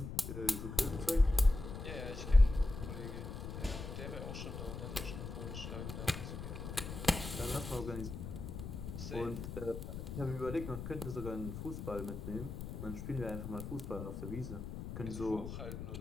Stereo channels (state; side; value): noise; left; rumble, 7 dB below the sound